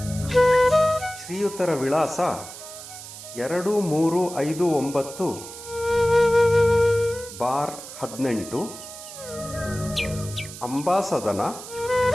ಶ್ರೀಯುತರ ವಿಳಾಸ 2359 ಬಾರ್ 18, ಅಂಬಾಸದನ,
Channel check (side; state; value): right; noise; hiss, 13 dB below the sound